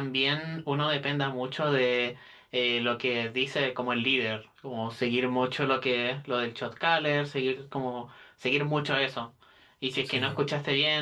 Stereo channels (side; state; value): both; identical; correlation 1.00